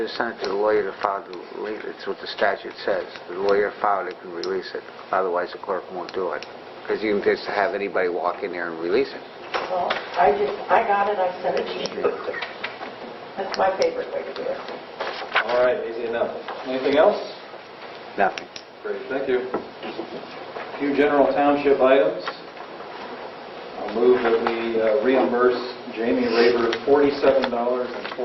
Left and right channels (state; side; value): identical; both; correlation 1.00